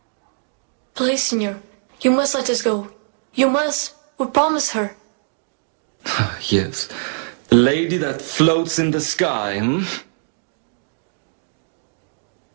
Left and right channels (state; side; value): silent; left; digital silence